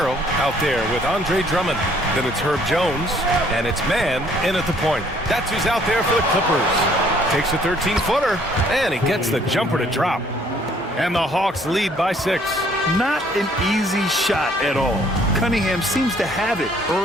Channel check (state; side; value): normal; both; correlation 0.61